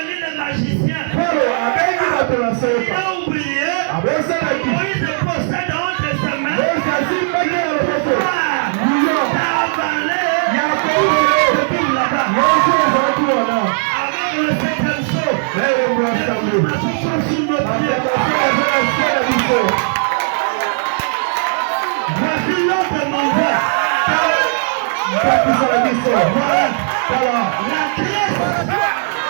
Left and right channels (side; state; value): left; silent; digital silence